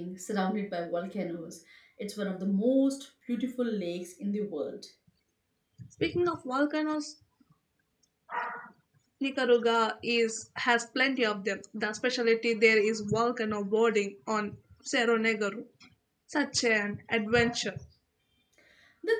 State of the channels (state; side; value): identical; both; correlation 1.00